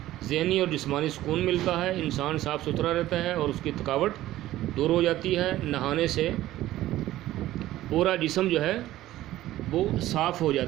ذہنی اور جسمانی سکون ملتا ہے، انسان صاف ستھرا رہتا ہے اور اس کی تھکاوٹ دور ہو جاتی ہے۔ نہانے سے پورا جسم جو ہے وہ صاف ہو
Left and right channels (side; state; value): left; quieter; 14.9 dB